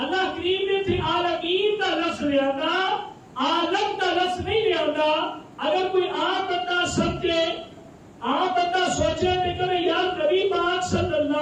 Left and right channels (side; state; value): both; identical; correlation 1.00